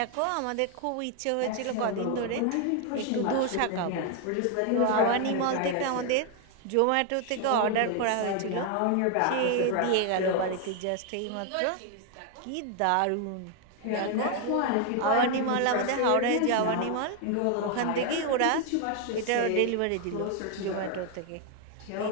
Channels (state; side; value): different; both; correlation 0.00